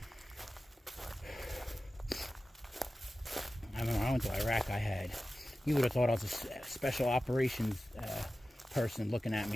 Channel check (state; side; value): normal; both; correlation 0.95